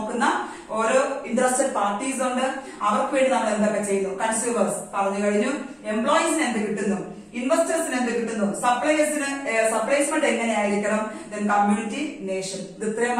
ഓരോ ഇൻട്രസ്റ്റഡ് പാർട്ടീസ് ഉണ്ട്. അവർക്ക് വേണ്ടി നമ്മൾ എന്തൊക്കെ ചെയ്യുന്നു? കൺസ്യൂമേഴ്സ് പറഞ്ഞു കഴിഞ്ഞു. എംപ്ലോയീസിന് എന്ത് കിട്ടുന്നു? ഇൻവെസ്റ്റേഴ്സിന് എന്ത് കിട്ടുന്നു? സപ്ലൈസ്മെന്റ് എങ്ങനെയായിരിക്കണം? Then community, nation. ഇത്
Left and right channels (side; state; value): both; identical; correlation 1.00